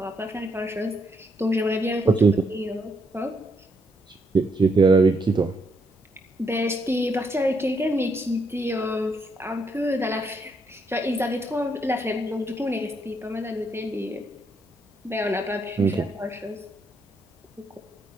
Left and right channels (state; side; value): normal; both; correlation 0.75